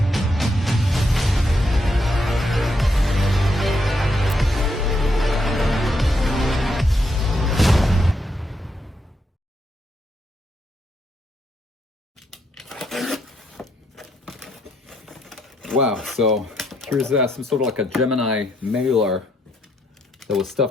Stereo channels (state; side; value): normal; both; correlation 0.77